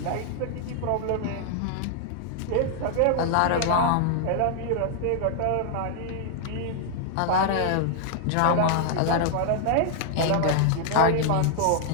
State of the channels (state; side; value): different; both; correlation 0.00